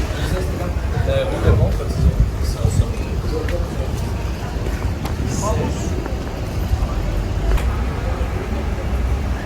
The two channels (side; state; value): both; identical; correlation 1.00